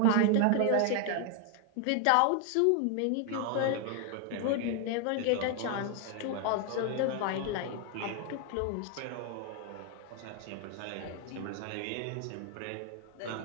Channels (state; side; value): different; both; correlation 0.00